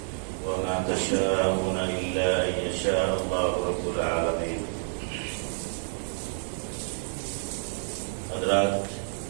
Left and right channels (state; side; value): silent; left; digital silence